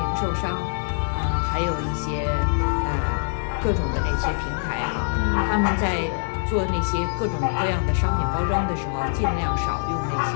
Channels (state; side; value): silent; right; 59 dB below the other